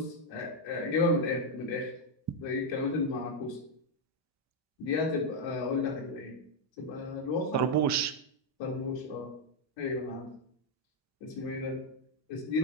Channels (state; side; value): normal; both; correlation 0.00